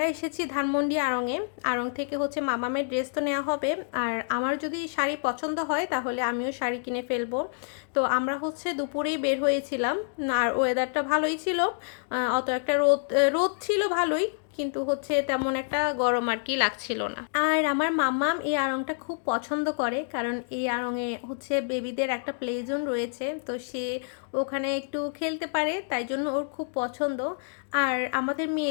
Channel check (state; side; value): silent; right; digital silence